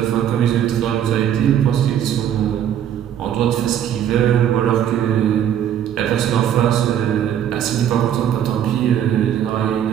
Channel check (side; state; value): left; quieter; 10.0 dB